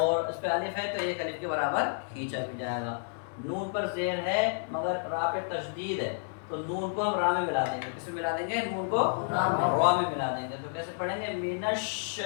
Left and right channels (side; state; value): right; silent; digital silence